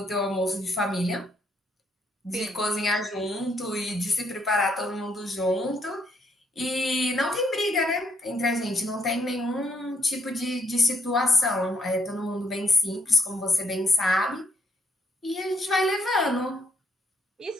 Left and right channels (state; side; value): normal; both; correlation 0.72